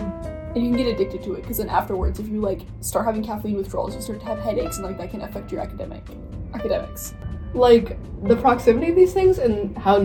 And you can get addicted to it, because then afterwards, if you like start having caffeine withdrawals, you start to have headaches, and like that can affect your academics. Like the proximity of these things and how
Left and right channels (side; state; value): both; identical; correlation 1.00